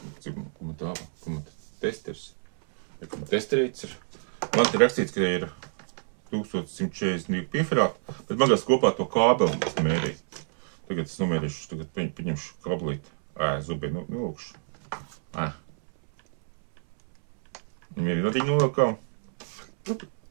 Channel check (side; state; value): left; silent; 59 dB below the other